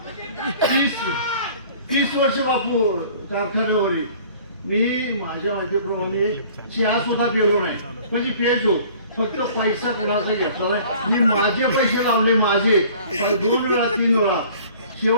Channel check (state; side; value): inverted; both; correlation -0.50